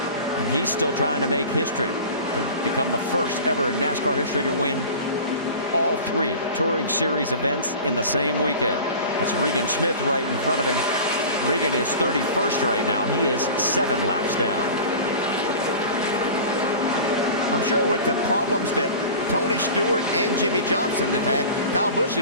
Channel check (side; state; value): both; inverted; correlation -0.37